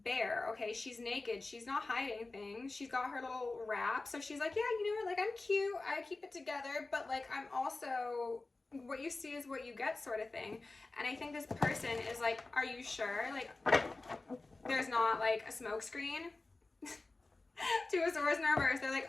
bare, okay? She's naked, she's not hiding things, she's got her little wrap, so she's like, yeah, you know what, like, I'm cute, I keep it together, but like, I'm also, what you see is what you get sort of thing. And I think this person is like, are you sure? Like, there's not like a smoke screen. Two of Swords in reverse. They're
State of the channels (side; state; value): right; quieter; 3.3 dB